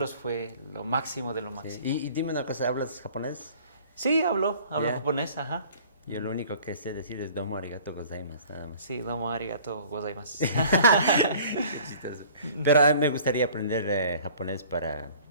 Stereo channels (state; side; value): inverted; both; correlation -0.50